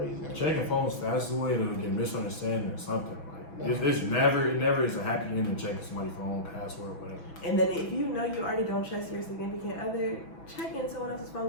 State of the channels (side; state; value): right; late; 6.1 ms